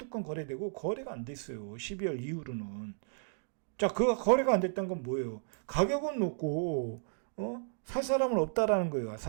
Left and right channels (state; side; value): silent; left; digital silence